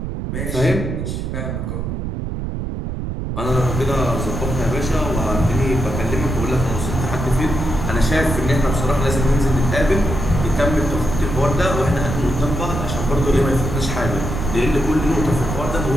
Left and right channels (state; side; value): noise; right; rumble, 4 dB below the sound